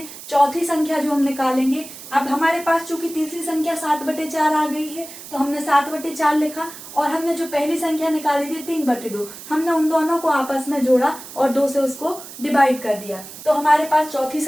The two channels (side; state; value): right; noise; hiss, 14 dB below the sound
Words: चौथी संख्या जो हम निकालेंगे। अब हमारे पास चूंकि तीसरी संख्या 7/4 आ गई है तो हमने 7/4 लिखा, और हमने जो पहली संख्या निकाली थी 3/2, हमने उन दोनों को आपस में जोड़ा और 2 से उसको डिवाइड कर दिया, तो हमारे पास चौथी